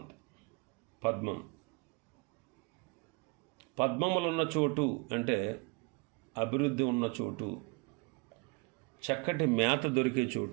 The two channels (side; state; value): left; quieter; 30.9 dB